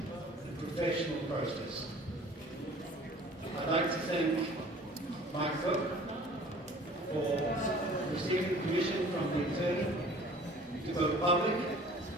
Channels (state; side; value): normal; both; correlation 0.49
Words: and professional process. I'd like to thank Mike Cook for receiving permission from the attorney to go public